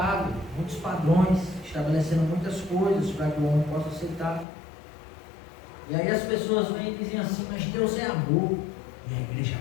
muitos padrões, estabelecendo muitas coisas para que o homem possa aceitar. E aí as pessoas vêm e dizem assim, mas Deus é amor. E a igreja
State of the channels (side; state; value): right; drops out; at 4.5 s